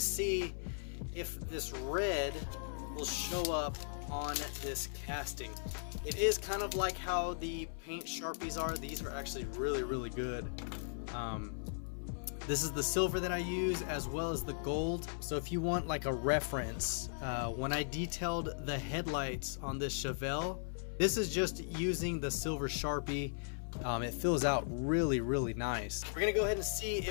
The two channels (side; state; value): right; silent; 53 dB below the other